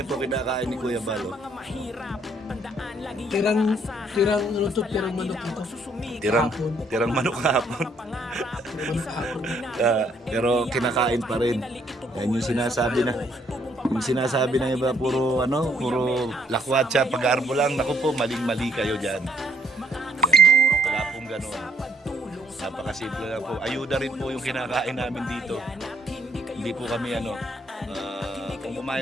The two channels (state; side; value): normal; both; correlation 0.66